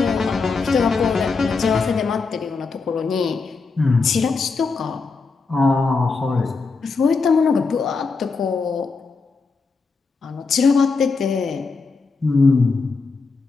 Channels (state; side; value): quieter; right; 4.4 dB